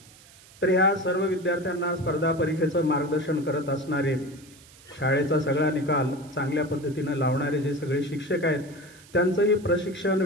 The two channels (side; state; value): right; noise; hiss, 24 dB below the sound